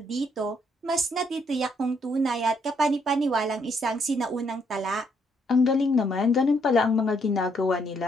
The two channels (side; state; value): both; normal; correlation 0.71